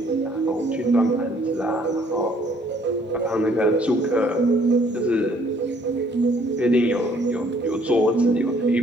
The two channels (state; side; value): normal; both; correlation 0.62